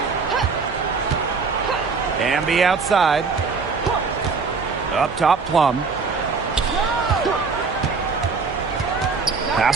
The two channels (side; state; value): left; quieter; 4.9 dB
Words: Wnba outside. Up top, Plum.